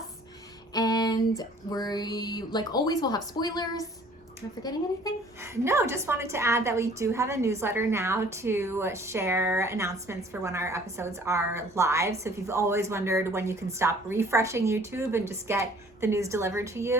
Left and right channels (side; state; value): both; normal; correlation 0.54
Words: And we, like always, will have spoilers. Am I forgetting anything? No, just wanted to add that we do have a newsletter now to share announcements for when our episodes are live. So if you've always wondered when you can stop refreshing YouTube and just get the news delivered to